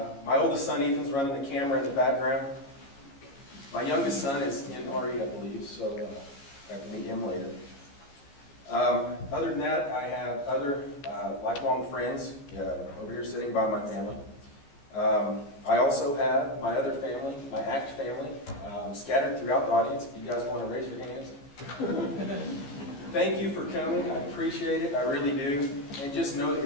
My oldest son Ethan's running the camera in the background. My youngest son is in RE, I believe, so I have to meet him later. Other than that, I have other lifelong friends over here sitting by my family. I also have my other family, my ACT family, scattered throughout the audience. If you guys want to raise your hands. Thank you for coming. I appreciate it. I really do. And just know that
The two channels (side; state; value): right; late; 14 ms